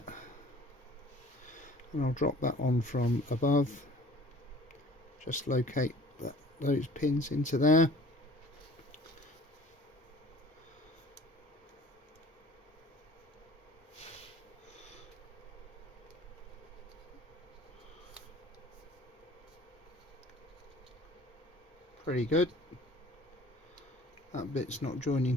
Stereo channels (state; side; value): normal; both; correlation 0.49